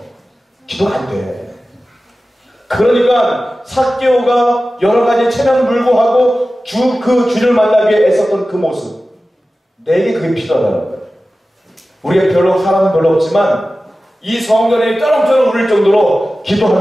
기도가 안 돼. 그러니까 삭개오가 여러 가지 체면 불구하고 그 주를 만나기 위해 애썼던 그 모습, 내게 그게 필요하다는 거예요. 우리가 사람은 별로 없지만 이 성전에 쩌렁쩌렁 울릴 정도로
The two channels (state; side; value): normal; both; correlation 0.95